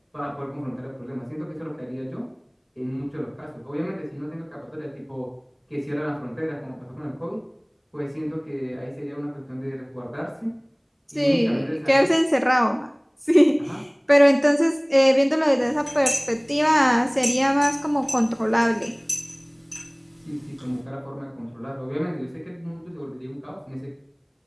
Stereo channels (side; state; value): both; identical; correlation 1.00